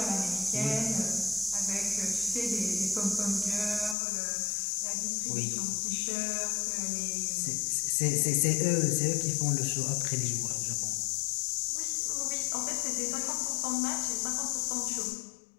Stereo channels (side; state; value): right; drops out; at 4.0 s